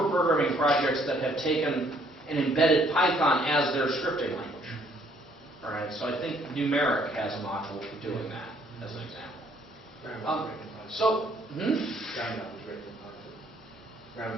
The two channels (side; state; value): both; normal; correlation 0.64